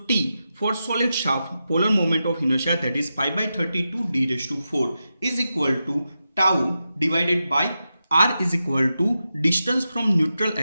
T for solid shaft polar moment of inertia, that is pi by 32 d raised to 4 is equal to tau divided by R is equal to distance from neutral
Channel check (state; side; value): inverted; both; correlation -0.90